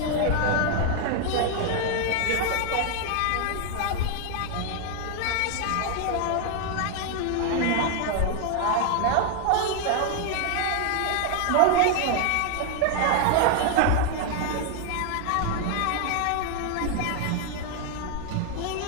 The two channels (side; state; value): both; different; correlation 0.00